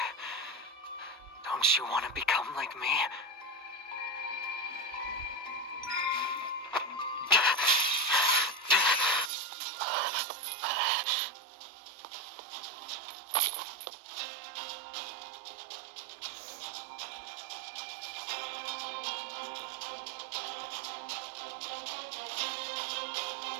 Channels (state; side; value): drops out; left; at 9.3 s